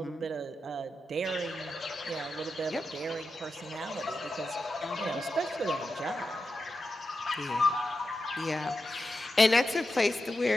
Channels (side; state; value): both; normal; correlation 0.90